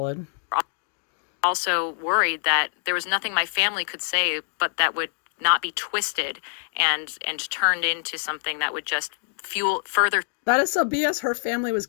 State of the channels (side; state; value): right; silent; digital silence